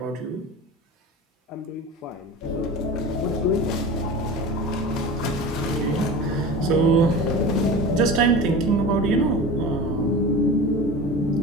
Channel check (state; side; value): normal; both; correlation 0.32